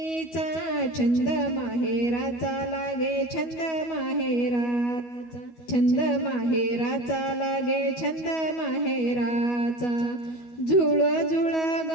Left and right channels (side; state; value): right; late; 12 ms